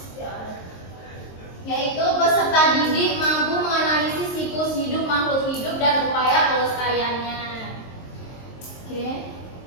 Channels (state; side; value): late; right; 23 ms